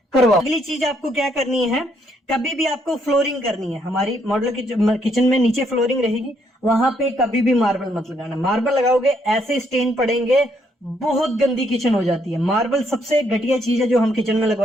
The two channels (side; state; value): both; normal; correlation 0.72